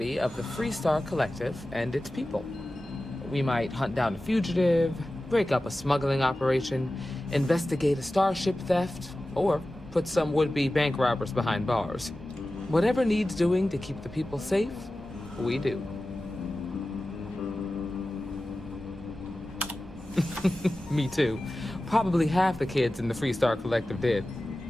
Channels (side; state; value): both; normal; correlation 0.95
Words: of the Freestar Collective and its people. We might hunt down a fugitive, break up a smuggling operation, investigate a starship theft, or put some would-be bank robbers behind bars. Whatever needs doing to keep the people safe, we do. Me too. Probably half the kids in the Freestar Collective did.